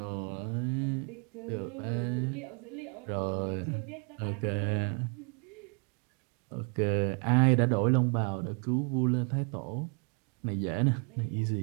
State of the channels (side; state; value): left; quieter; 37.5 dB